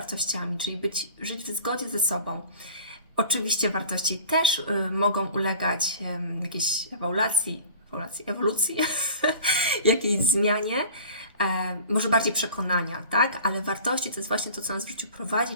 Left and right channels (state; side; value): inverted; both; correlation -0.41